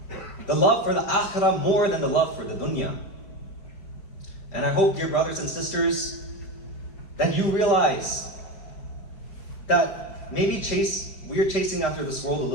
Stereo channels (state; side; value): late; right; 5.1 ms